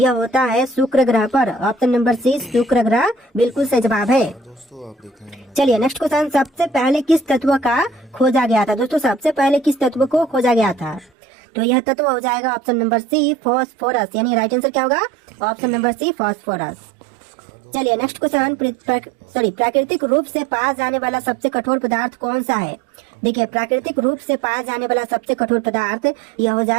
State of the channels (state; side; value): drops out; left; at 11.1 s